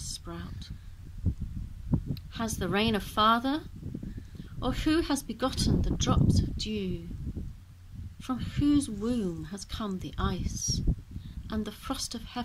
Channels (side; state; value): both; identical; correlation 1.00